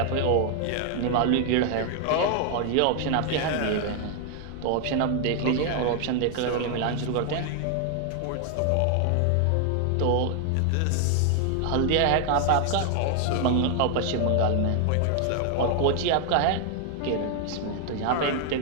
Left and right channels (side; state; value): both; different; correlation 0.00